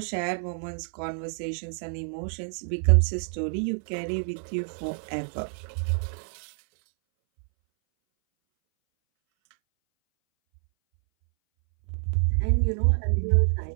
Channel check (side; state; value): left; silent; 60 dB below the other